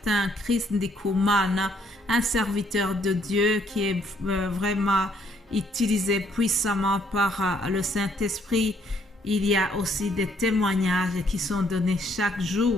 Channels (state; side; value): normal; both; correlation 0.67